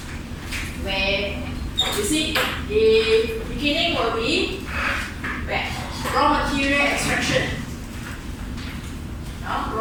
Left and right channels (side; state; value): both; identical; correlation 1.00